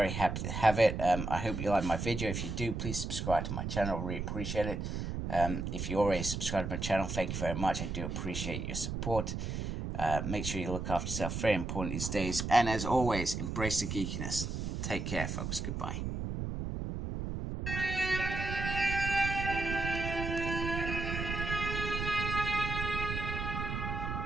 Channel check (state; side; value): noise; right; rumble, 3 dB below the sound